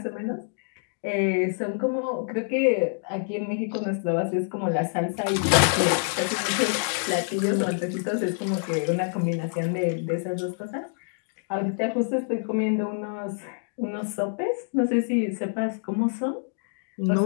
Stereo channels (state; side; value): silent; right; digital silence